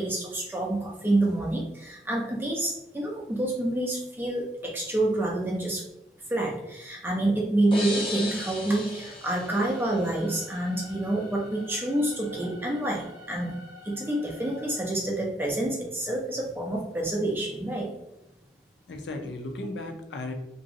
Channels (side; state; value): both; normal; correlation 0.75